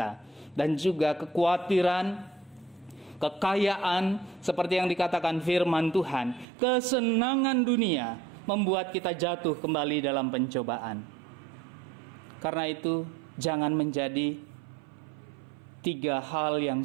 dan juga kekhawatiran, kekayaan, seperti yang dikatakan firman Tuhan, kesenangan dunia membuat kita jatuh kembali dalam pencobaan. Karena itu jangan menjadi 3 hal yang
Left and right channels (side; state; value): left; drops out; at 6.5 s